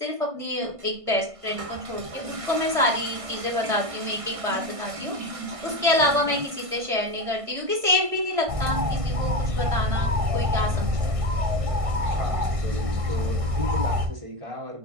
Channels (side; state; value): left; late; 1.5 ms